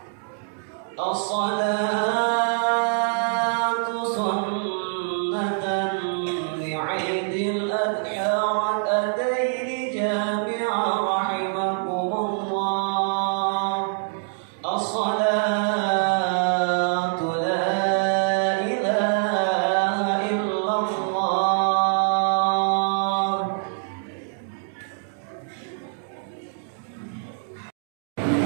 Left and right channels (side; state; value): left; silent; digital silence